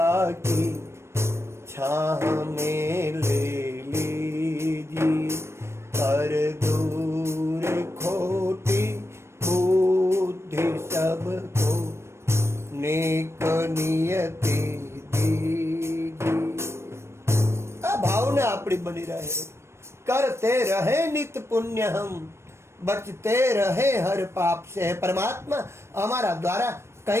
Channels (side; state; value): left; late; 0.13 ms